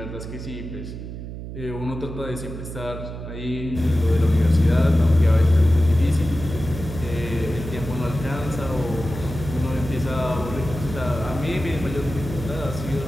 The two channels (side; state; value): right; noise; hum, 9 dB below the sound